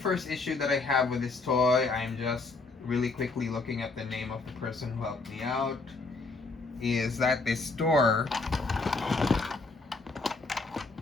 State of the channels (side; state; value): right; quieter; 3.7 dB